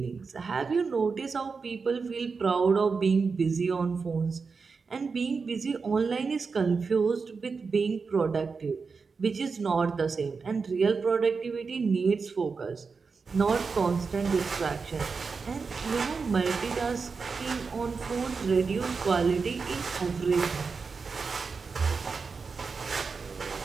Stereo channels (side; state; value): left; quieter; 4.9 dB